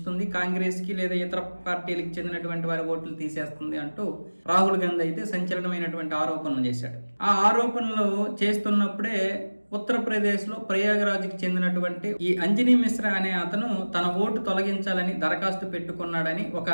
కాంగ్రెస్ కి లేదా ఇతర పార్టీలకు చెందినటువంటి వారి ఓట్లు తీసేస్తుంది అంటూ రాహుల్ గాంధీ అయితే సంచలనమైనటువంటి ఆరోపణలు చేశాడు. ఆ ఆరోపణలు చేస్తున్నప్పుడే ఉత్తరప్రదేశ్లో ప్రయాగరాజ్కి చెందినటువంటి ఈ అంజనీ మిశ్రా అనే అతను తన ఓటు తొలగించాలని దరఖాస్తు పెట్టుకున్నాడని ఒక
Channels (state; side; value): inverted; both; correlation -1.00